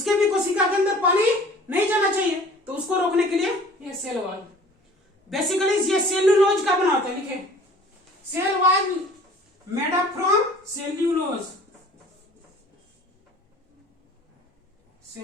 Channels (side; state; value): both; normal; correlation 0.49